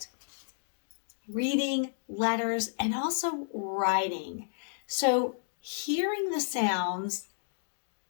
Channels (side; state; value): right; silent; digital silence